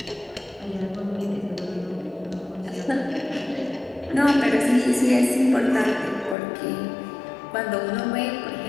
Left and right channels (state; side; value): drops out; right; at 6.4 s